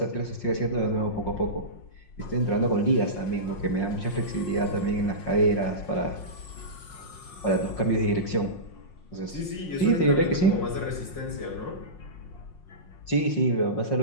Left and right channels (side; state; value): right; late; 5.5 ms